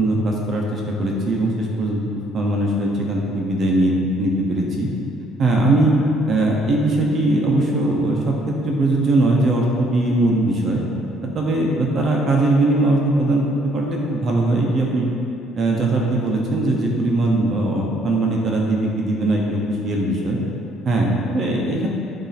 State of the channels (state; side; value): normal; both; correlation 0.66